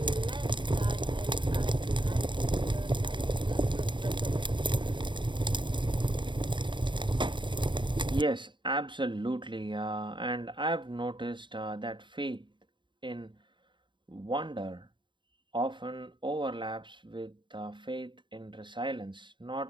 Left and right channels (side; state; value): left; late; 0.23 ms